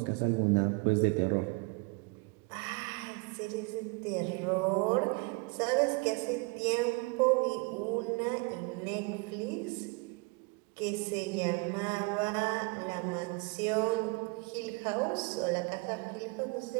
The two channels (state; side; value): quieter; left; 29.4 dB